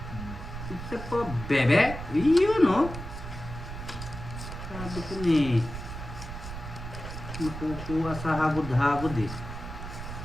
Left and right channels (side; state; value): right; noise; rumble, 9 dB below the sound